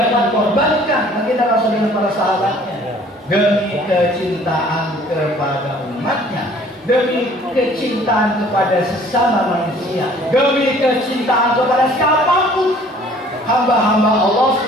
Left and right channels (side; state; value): both; normal; correlation 0.54